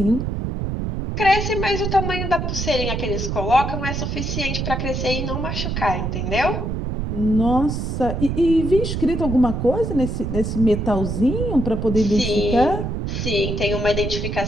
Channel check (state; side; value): noise; right; rumble, 2 dB below the sound